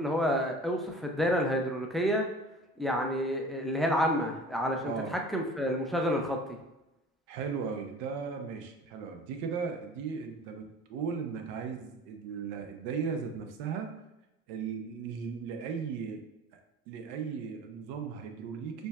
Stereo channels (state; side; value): normal; both; correlation 0.43